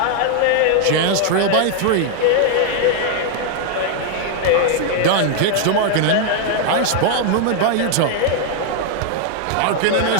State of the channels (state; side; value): different; both; correlation 0.00